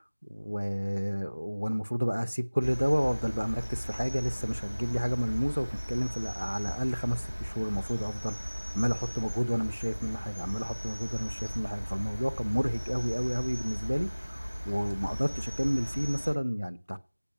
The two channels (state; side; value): inverted; both; correlation -1.00